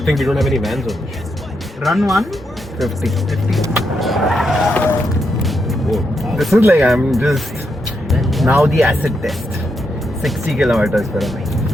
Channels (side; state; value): both; normal; correlation 0.82